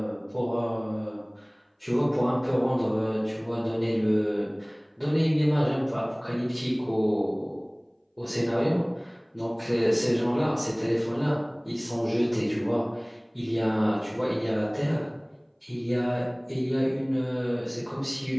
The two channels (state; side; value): identical; both; correlation 1.00